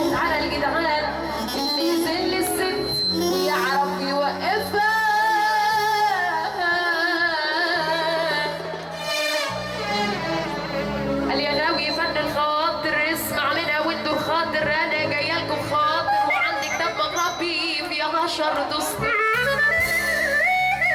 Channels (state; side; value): identical; both; correlation 1.00